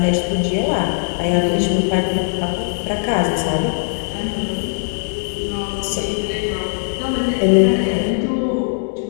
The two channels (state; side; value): silent; right; digital silence